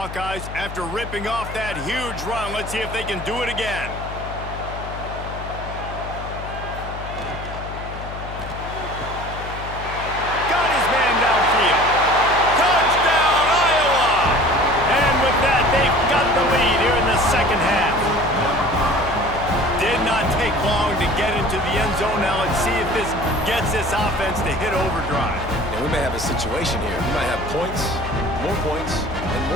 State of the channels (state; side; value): noise; left; hum, 10 dB below the sound